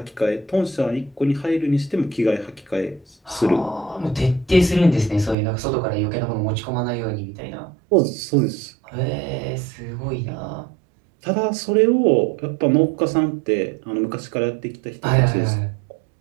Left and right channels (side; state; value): left; drops out; at 5.4 s